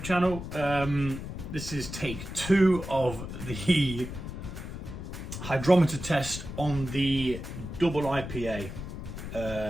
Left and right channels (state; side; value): noise; left; rumble, 8 dB below the sound